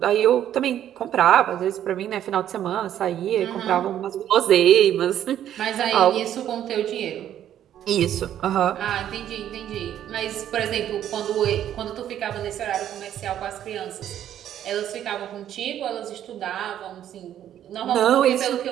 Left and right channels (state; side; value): quieter; left; 10.9 dB